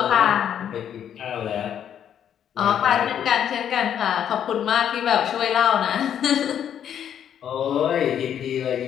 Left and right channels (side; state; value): right; quieter; 9.3 dB